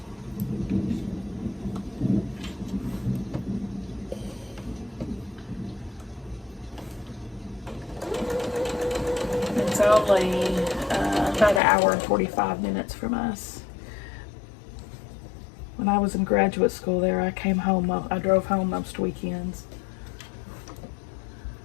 only about an hour and 45 minutes from us. When I was in graduate school there, I came home, I drove home most weekends.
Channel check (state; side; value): drops out; right; at 11.6 s